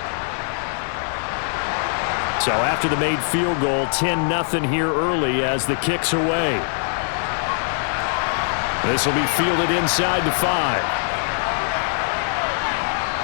So after the made field goal, 10-0 here early as the kick's away. This will be fielded inside the 5.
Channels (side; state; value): right; silent; 60 dB below the other